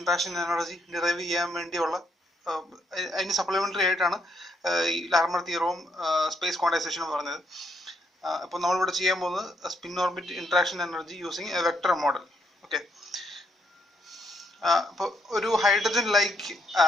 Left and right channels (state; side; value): normal; both; correlation 0.74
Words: energy derive ചെയ്യാൻ വേണ്ടിയുള്ള അതിന് സപ്ലിമെന്ററി ആയിട്ടാണ് ഈ ലാർമർ തിയറവും സ്പേസ് ക്വാണ്ടൈസേഷനും പറഞ്ഞത്. അപ്പോൾ നമ്മളിവിടെ ചെയ്യാൻ പോകുന്നത് spin orbit interaction energy using A vector model. Okay, അപ്പോൾ ഒരു ഹൈഡ്രജൻ ലൈക്ക്